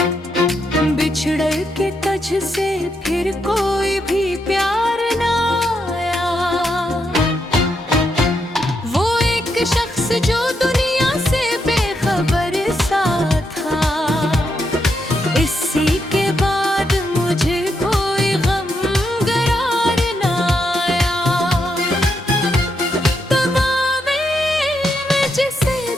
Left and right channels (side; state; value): both; normal; correlation 0.81